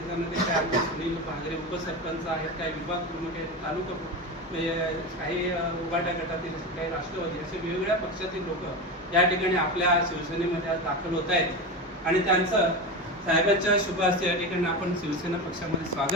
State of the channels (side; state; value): both; normal; correlation 0.21